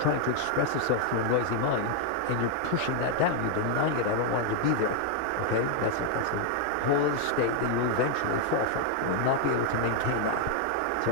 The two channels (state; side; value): different; both; correlation 0.00